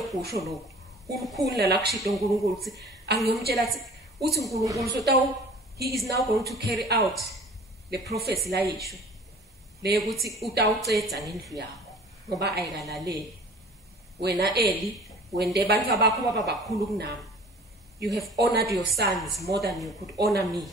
lokho ukukhulula la kushito uNkulunkulu ukuthi angiyomtshela uthi uNkulunkulu so he is now going to carry out the prophecy la yisho le ukuthi utawucetha ngendlu yakho ngoba ayikalaleli wena Eli wende abantu abakho baba bakhulu kunami you have honored your sons more than you could honor me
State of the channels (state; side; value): normal; both; correlation 0.46